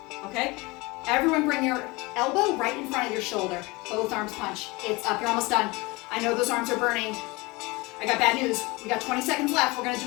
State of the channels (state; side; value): quieter; right; 24.1 dB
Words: Okay? Everyone bring your elbow right in front of your shoulder. Both arms punch. It's up. You're almost done. I know those arms are burning. I got bad news. We got 20 seconds left. We're going to